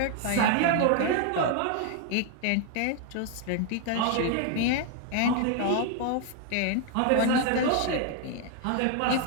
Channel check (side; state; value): both; different; correlation 0.00